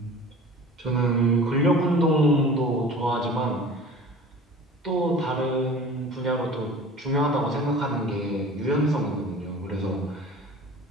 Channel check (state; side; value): normal; both; correlation 0.41